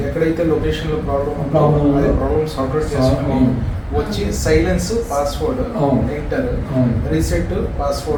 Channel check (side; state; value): both; identical; correlation 1.00